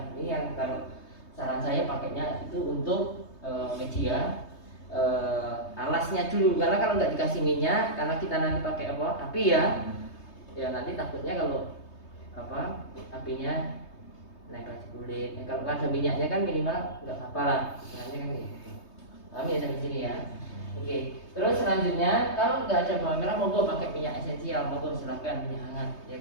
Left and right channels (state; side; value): late; right; 3.2 ms